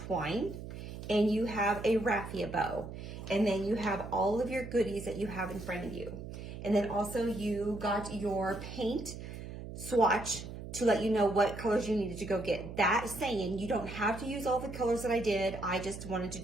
and you have a raffia bow, and then you have all of your goodies that you have in front of you. And then also you got your paint swatch to let you know what colors you needed to go get. That saying, you don't have to use all the colors that I did. I just wanted to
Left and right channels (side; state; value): right; noise; hum, 10 dB below the sound